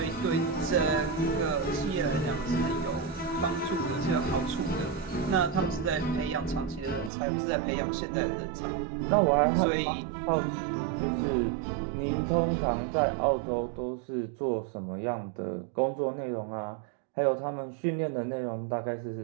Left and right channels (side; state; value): left; drops out; at 7.1 s